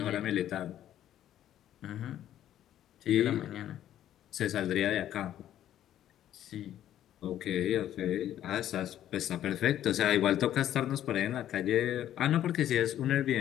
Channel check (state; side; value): quieter; right; 11.7 dB